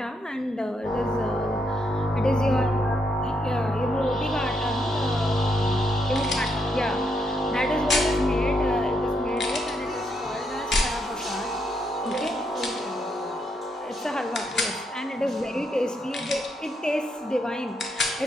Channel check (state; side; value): normal; both; correlation 0.78